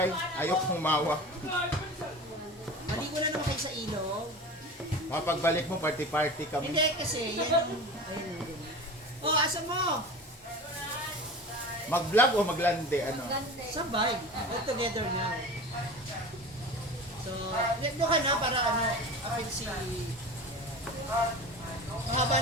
ayok humawa. Maligo na naman kayo sa ilog. Pagbalik mo, party-party kami. Hindi kasi, yan. Ayun. Oh, asa mo? Mag-vlog o maglande? Ano? Sabay. All together now. So, doon ka na para apil si... Mahaba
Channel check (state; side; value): normal; both; correlation 0.33